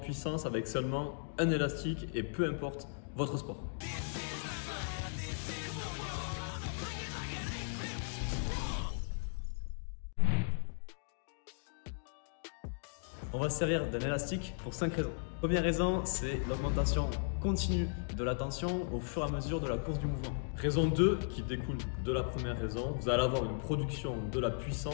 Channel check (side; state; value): right; silent; digital silence